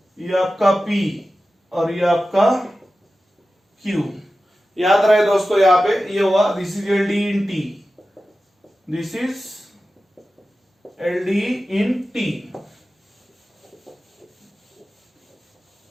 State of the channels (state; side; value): normal; both; correlation 0.94